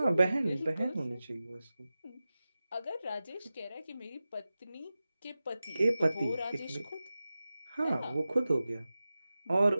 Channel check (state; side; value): inverted; both; correlation -0.95